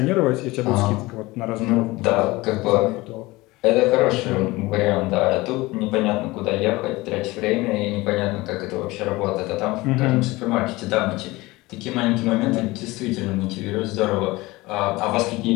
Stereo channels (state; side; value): quieter; right; 20.9 dB